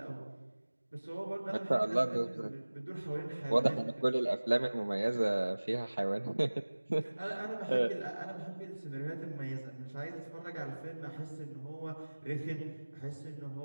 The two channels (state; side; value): inverted; both; correlation -1.00